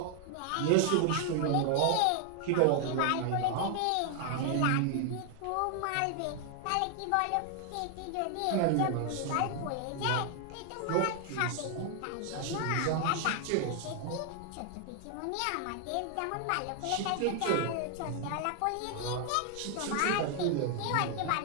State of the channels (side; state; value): both; different; correlation 0.00